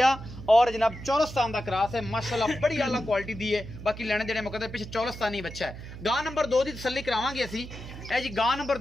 और जनाब चौलस्तान का क्रॉस है माशाल्लाह बड़ी आला क्वालिटी दी है। बाकी लेने देने मुकद्दर पिछे चौलस्तानी बच्चा है। गां नंबर 2 की तसल्ली करावांगे असी। ए जी गां नंबर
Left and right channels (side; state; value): right; noise; hum, 12 dB below the sound